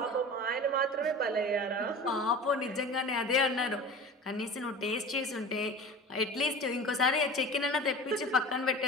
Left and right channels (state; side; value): normal; both; correlation 0.35